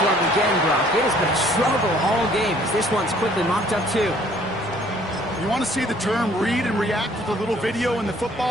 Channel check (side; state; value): both; normal; correlation 0.59